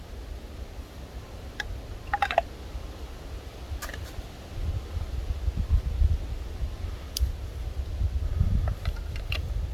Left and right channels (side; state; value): both; identical; correlation 1.00